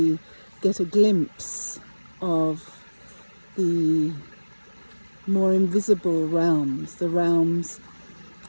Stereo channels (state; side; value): inverted; both; correlation -1.00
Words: get a glimpse of the more invisible realms, the realms